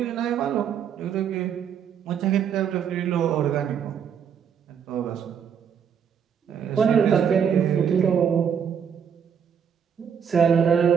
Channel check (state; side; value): quieter; left; 7.7 dB